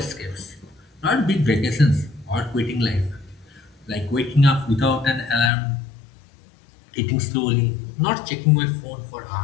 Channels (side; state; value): right; drops out; at 5.5 s